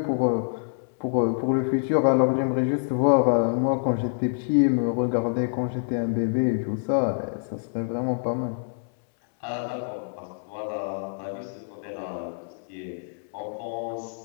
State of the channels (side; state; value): right; silent; 61 dB below the other